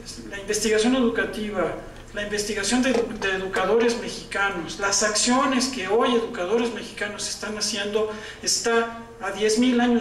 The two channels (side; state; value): both; identical; correlation 1.00